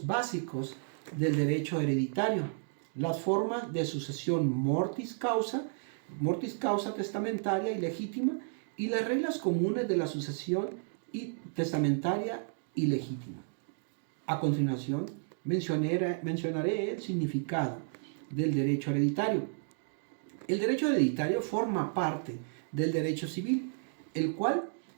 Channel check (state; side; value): silent; left; digital silence